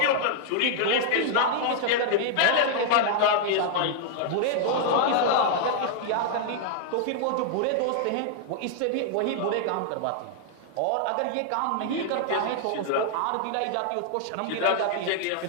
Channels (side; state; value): both; different; correlation 0.00